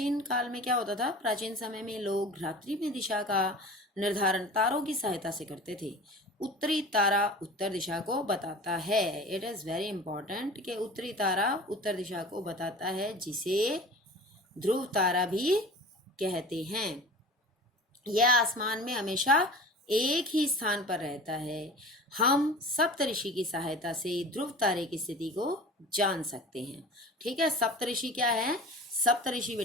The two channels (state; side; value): normal; both; correlation 0.38